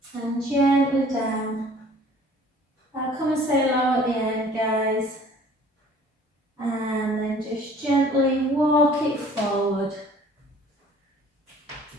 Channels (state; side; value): normal; both; correlation 0.52